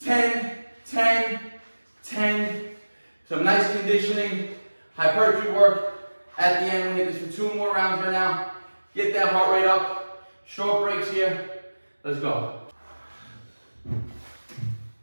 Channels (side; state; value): both; inverted; correlation -1.00